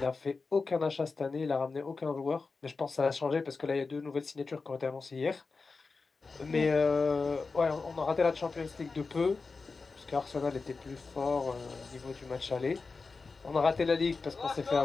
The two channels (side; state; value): right; quieter; 4.3 dB